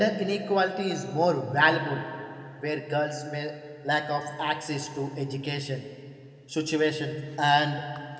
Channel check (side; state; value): both; identical; correlation 1.00